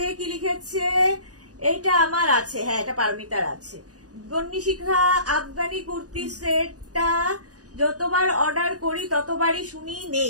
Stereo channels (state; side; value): late; left; 0.67 ms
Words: কি লিখেছে? এটা আমার আছে, হ্যাঁ এটা পারমিতার আছে। বন্নিশিখা, আফগানি কুর্তি সেটটা যতবার অর্ডার করি ততবারই শুনি